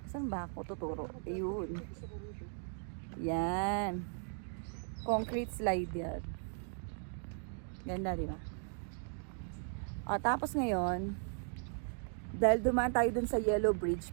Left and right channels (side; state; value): left; silent; 53 dB below the other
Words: saan ba ako tuturo? Ayun. Yan. Concrete slide yan. Ganda, di ba? Tapos ngayon, dahil dumaan tayo dun sa Yellow Bridge,